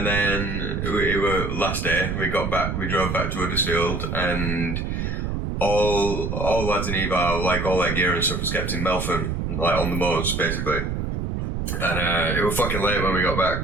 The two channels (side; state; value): right; noise; rumble, 2 dB below the sound